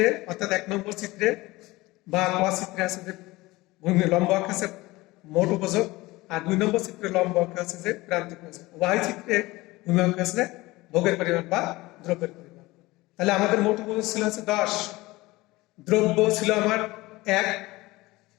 অর্থাৎ 1 নম্বর চিত্রে বা ক চিত্রে আছে যে ভূমি লম্ব অক্ষ আছে মোট উপযোগ, আর 2 নম্বর চিত্রে লম্ব অক্ষ আছে যে প্রান্তিক উপযোগ। উভয় চিত্রে ভূমি অক্ষ আছে ভোগের পরিমাণ বা দ্রব্যের পরিমাণ। তাহলে আমাদের মোট উপযোগ ছিল আছে 10, দ্রব্য ছিল আমার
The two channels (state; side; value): quieter; right; 20.4 dB